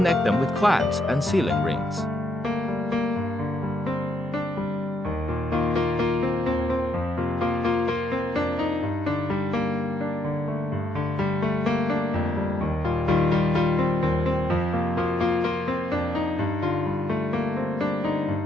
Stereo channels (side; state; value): both; normal; correlation 0.73